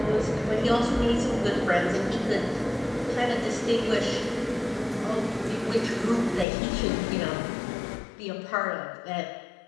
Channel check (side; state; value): right; drops out; at 6.5 s